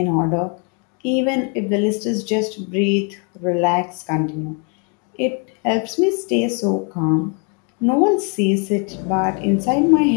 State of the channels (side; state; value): right; quieter; 37.0 dB